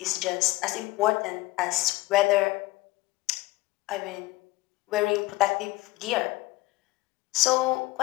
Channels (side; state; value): right; quieter; 19.7 dB